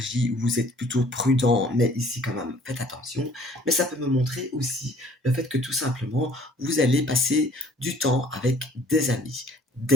où vous êtes plutôt prudent, mais ici quand même, faites attention. Mais ça peut me montrer aussi le fait que tout simplement, vous allez passer du temps avec des amis.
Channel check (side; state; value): both; normal; correlation 0.55